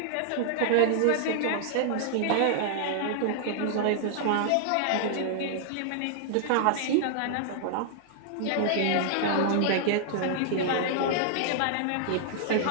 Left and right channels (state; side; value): different; both; correlation -0.01